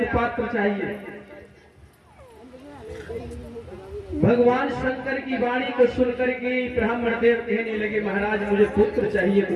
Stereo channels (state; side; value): identical; both; correlation 1.00